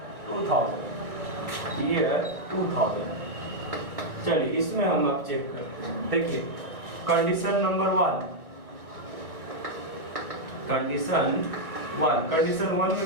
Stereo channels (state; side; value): late; left; 1.2 ms